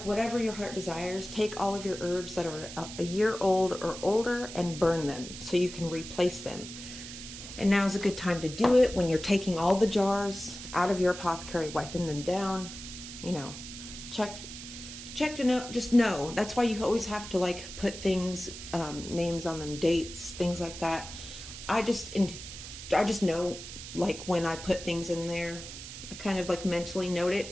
whatever your heart desires. Take all of your herbs that are a year old or older and burn them so you can replace them. And now is a good time to do it when you're taking all the jars out of your apothecary, wiping them down, you know, check to know, just know. That's why you always have to like put things, names on them, dates, things like that. I just know, like, when I put things in there, I kind of like mentally note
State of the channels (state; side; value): noise; right; hiss, 11 dB below the sound